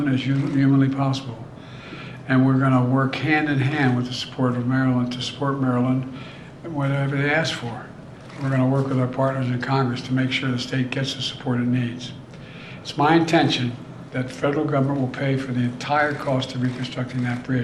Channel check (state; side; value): identical; both; correlation 1.00